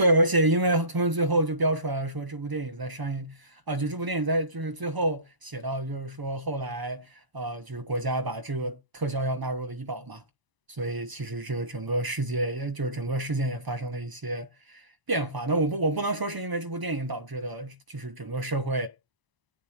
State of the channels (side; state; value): left; late; 1.0 ms